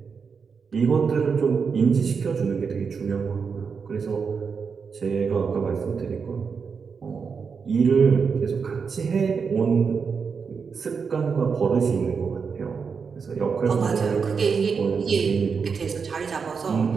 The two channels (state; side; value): quieter; left; 5.7 dB